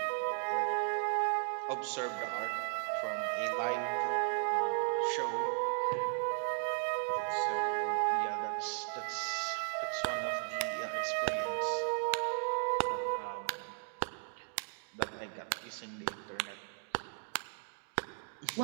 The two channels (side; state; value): left; silent; 54 dB below the other